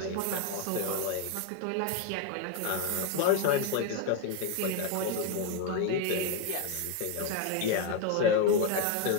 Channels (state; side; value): different; both; correlation 0.01